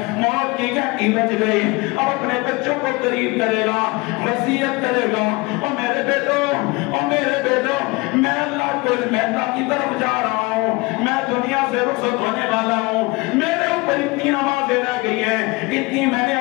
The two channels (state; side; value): quieter; right; 24.9 dB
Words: موت کی گھنٹی بج گئی، اب اپنے بچوں کو قریب کرے گا، وصیت کرے گا، او میرے بیٹو، او میرے بیٹو، میں اللہ کو اللہ کی طرف جا رہا ہوں، میں دنیا سے رخصت ہونے والا ہوں، میرے اوپر اتنی نمازیں رہ گئی ہیں، اتنی میں نے